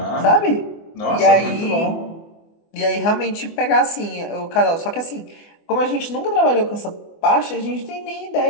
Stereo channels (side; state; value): right; late; 24 ms